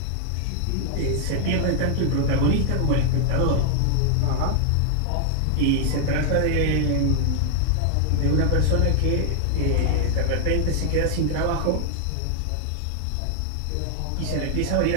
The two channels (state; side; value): different; both; correlation 0.00